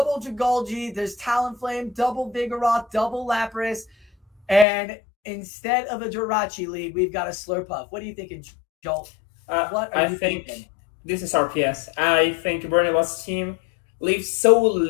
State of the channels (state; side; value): drops out; right; at 4.7 s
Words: Dragolgi. There's Talonflame, double Vigoroth, double Lapras. And instead of a Jirachi lead, we've got a Slurpuff. What are you thinking, Joel? What are you thinking? This is RPS. I think Burnibus' team leaves so